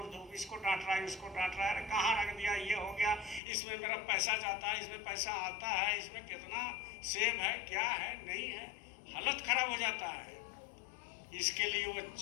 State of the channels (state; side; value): drops out; right; at 3.4 s